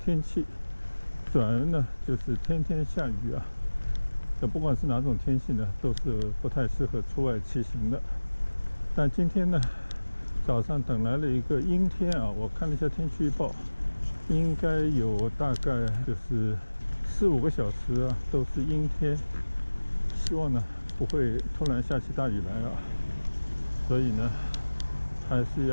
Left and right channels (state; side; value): inverted; both; correlation -1.00